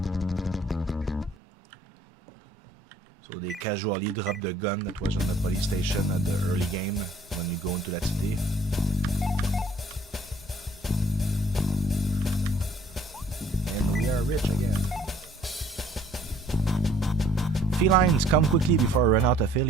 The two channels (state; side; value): normal; both; correlation 0.58